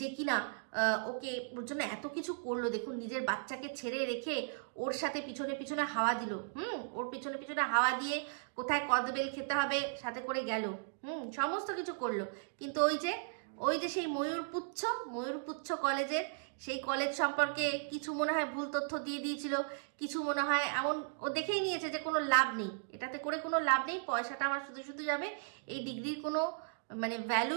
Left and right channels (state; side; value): silent; left; digital silence